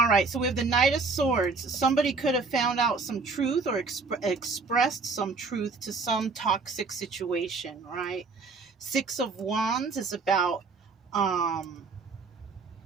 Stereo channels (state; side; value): quieter; left; 4.2 dB